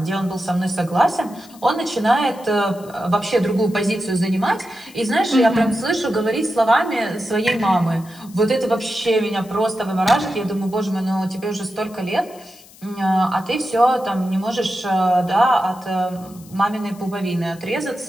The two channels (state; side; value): noise; left; hiss, 23 dB below the sound